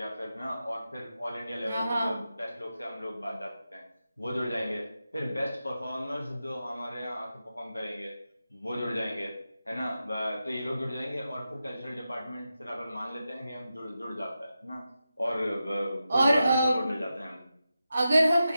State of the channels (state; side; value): inverted; both; correlation -0.90